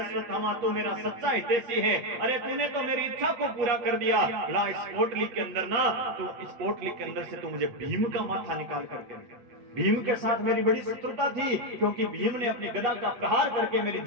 तू मेरा सच्चा हितैषी है, अरे तूने तो मेरी इच्छा को पूरा कर दिया। ला इस पोटली के अंदर ना, तो इस पोटली के अंदर से तू मुझे भीम का माथा निकाल करके। भीम के साथ मेरी बड़ी शत्रुता थी क्योंकि भीम ने अपनी गदा का प्रहार करके मेरी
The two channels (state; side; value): late; left; 8.4 ms